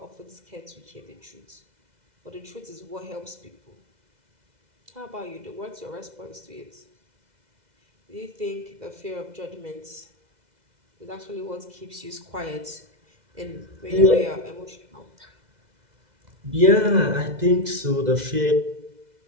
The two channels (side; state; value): left; late; 2.0 ms